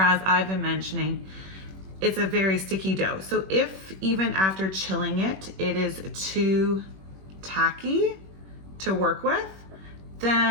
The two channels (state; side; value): late; left; 21 ms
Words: I've been mentioning, it's a very sticky dough. So if even after chilling it, it is too tacky to work with,